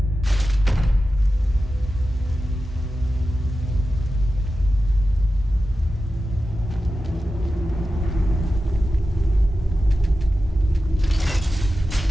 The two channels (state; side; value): normal; both; correlation 0.92